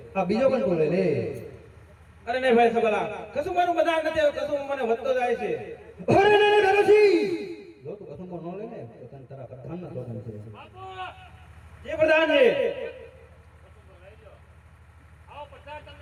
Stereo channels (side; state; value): both; identical; correlation 1.00